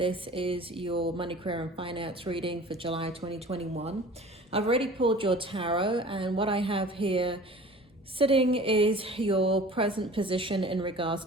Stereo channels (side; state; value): both; normal; correlation 0.43